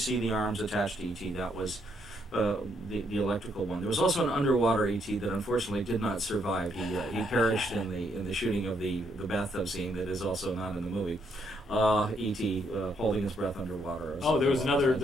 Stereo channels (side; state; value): both; normal; correlation 0.74